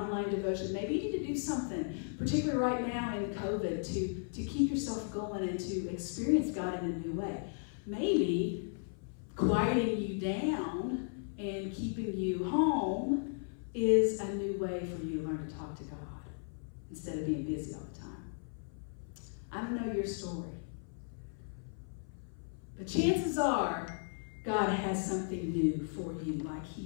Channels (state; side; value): silent; right; 54 dB below the other